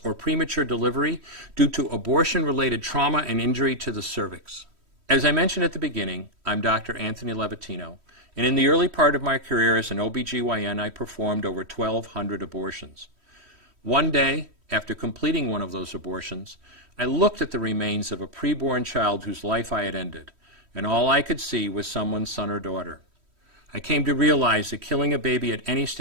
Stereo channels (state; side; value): late; left; 3.1 ms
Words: or premature delivery due to abortion-related trauma and injury to the cervix. As I mentioned at the beginning, I'm Dr. Anthony Levatino, and in the early part of my career as an OBGYN, I performed over 1,200 abortions. One day, after completing one of those abortions, I looked at the remains of a preborn child whose life I had ended, and all I could see was someone's son or daughter. I came to realize that killing a baby at any